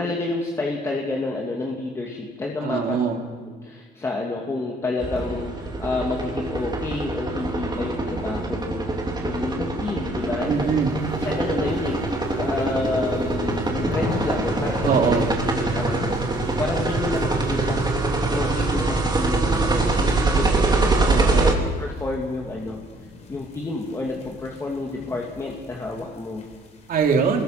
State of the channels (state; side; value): normal; both; correlation 0.62